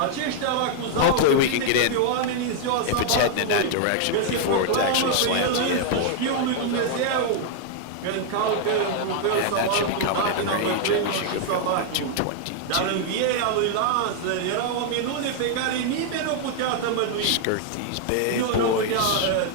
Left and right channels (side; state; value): both; different; correlation 0.00